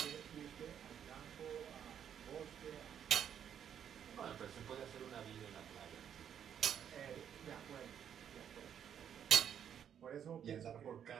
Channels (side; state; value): left; quieter; 8.9 dB